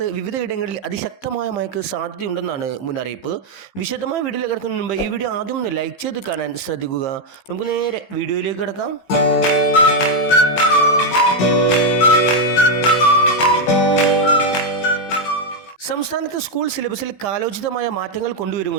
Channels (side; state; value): right; late; 15 ms